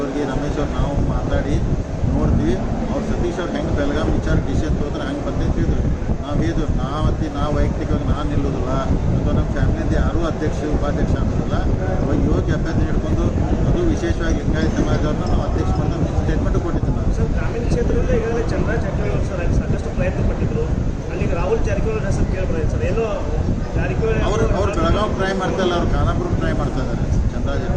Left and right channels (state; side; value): identical; both; correlation 1.00